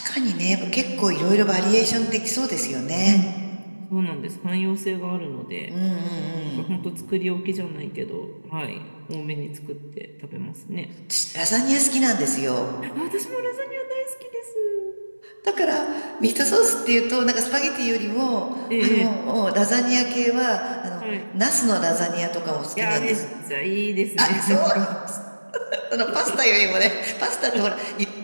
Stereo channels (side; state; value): both; inverted; correlation -1.00